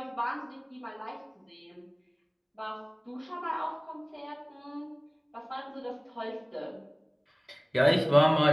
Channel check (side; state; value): both; identical; correlation 1.00